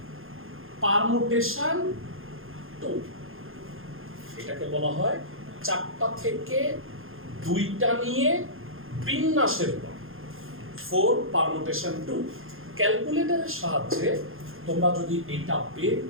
পারমুটেশন 2। এটাকে বলা হয় 4টা থেকে 2টা নিয়ে বিন্যাসের উপায় 4 পারমুটেশন 2। ক্যালকুলেটরের সাহায্যে তোমরা যদি এটা বের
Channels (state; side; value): late; left; 0.60 ms